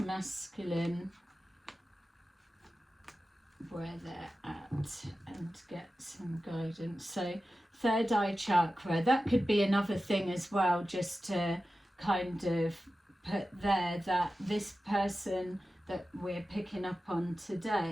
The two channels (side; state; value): both; normal; correlation 0.94